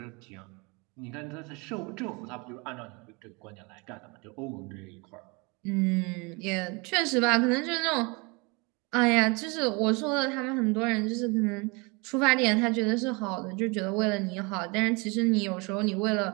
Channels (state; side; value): quieter; left; 28.7 dB